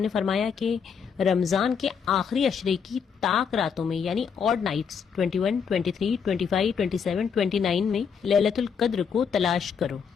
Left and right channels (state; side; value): quieter; right; 6.7 dB